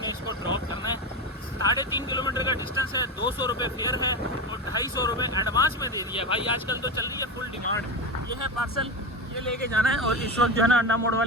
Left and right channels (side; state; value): both; normal; correlation 0.19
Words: ने इसको ड्रॉप करना है। 3.5 किलोमीटर का डिस्टेंस है, 200 रुपये फेयर है और 250 रुपये एडवांस में दे दिया है भाई। आजकल तो चल रही है फुल डिमांड। ये है पार्सल, ये लेके जाना है। और इस वक्त जो है ना अंडा मोड़